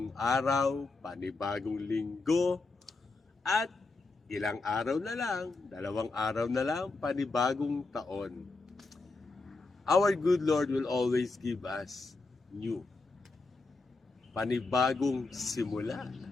araw, panibagong linggo, at ilang araw na lang, 2 araw na lang, panibagong taon. Our good Lord will always give us new, panibagong simula.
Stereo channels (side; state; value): right; quieter; 3.6 dB